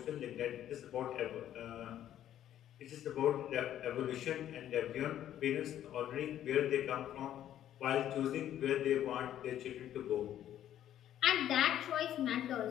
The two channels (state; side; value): quieter; right; 11.4 dB